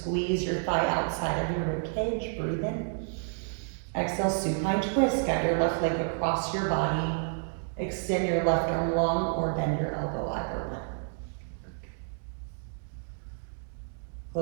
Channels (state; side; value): silent; left; 58 dB below the other